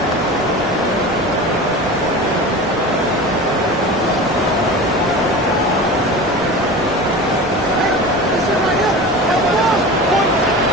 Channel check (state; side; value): normal; both; correlation 0.32